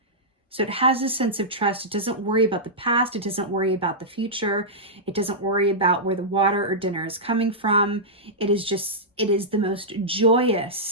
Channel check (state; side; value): normal; both; correlation -0.12